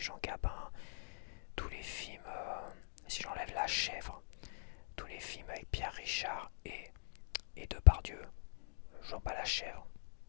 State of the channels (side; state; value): right; silent; digital silence